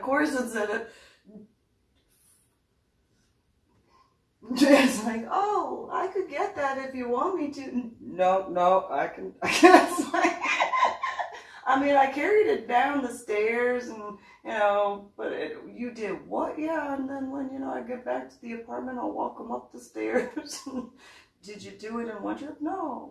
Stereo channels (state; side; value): identical; both; correlation 1.00